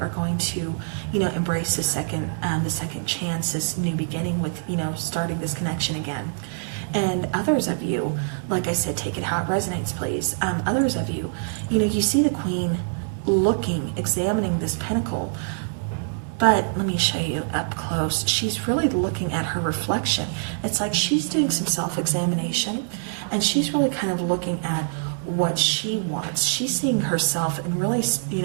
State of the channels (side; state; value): left; silent; digital silence